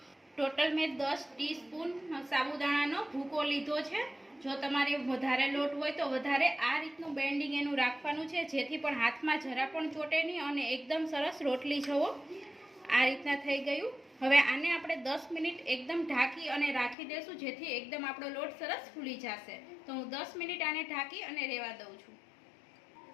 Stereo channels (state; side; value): drops out; right; at 16.9 s